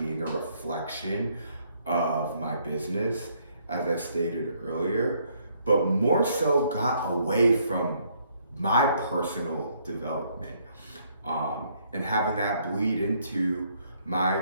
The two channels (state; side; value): inverted; both; correlation -0.69